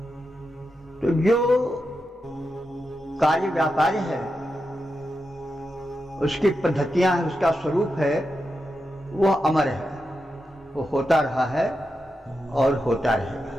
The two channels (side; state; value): both; normal; correlation 0.88